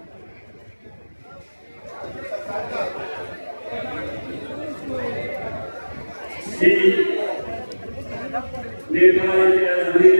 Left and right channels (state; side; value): inverted; both; correlation -1.00